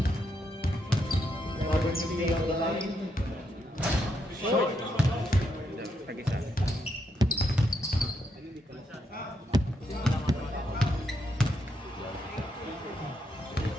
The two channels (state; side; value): normal; both; correlation 0.79